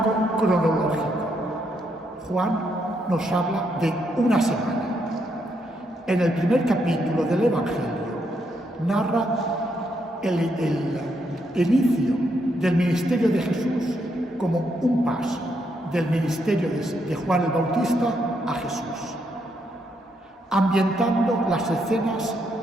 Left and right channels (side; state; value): both; normal; correlation 0.77